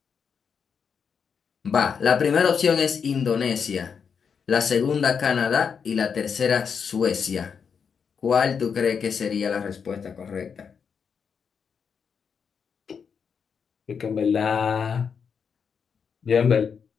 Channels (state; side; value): quieter; right; 6.5 dB